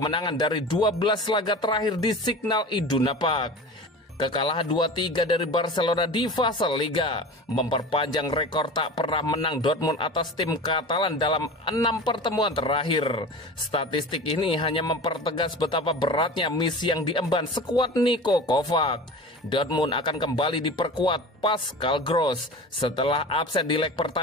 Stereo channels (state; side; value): normal; both; correlation 0.34